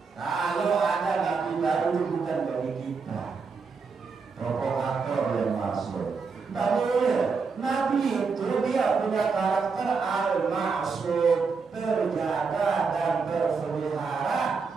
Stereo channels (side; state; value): left; quieter; 5.0 dB